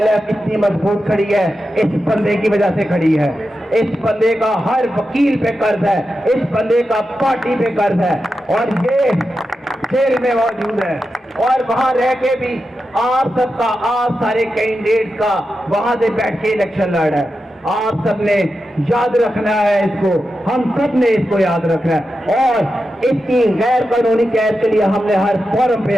ایف اتنی مضبوط کھڑی ہے اس بندے کی وجہ سے کھڑی ہے. اس بندے کا ہر وکیل پہ قرض ہے, اس بندے کا پارٹی پہ قرض ہے, اور یہ جیل میں موجود ہے. اور وہاں رہ کے بھی آپ سب کا, آپ سارے کینڈیڈیٹ کا وہاں سے بیٹھ کے الیکشن لڑ رہا ہے. آپ سب نے یاد رکھنا ہے اس کو, ہم سب نے اس کو یاد رکھنا ہے, اور اس کی غیر قانونی قید کے لیے ہم نے ہر فورم پہ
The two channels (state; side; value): normal; both; correlation 0.90